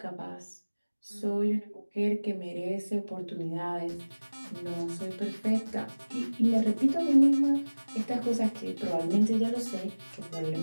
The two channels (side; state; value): both; inverted; correlation -1.00